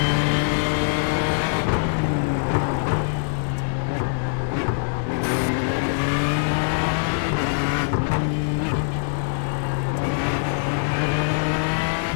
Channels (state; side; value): silent; right; 61 dB below the other